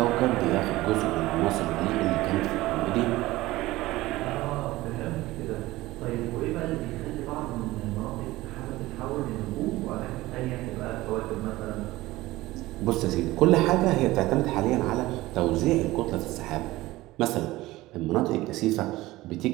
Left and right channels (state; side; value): quieter; left; 18.3 dB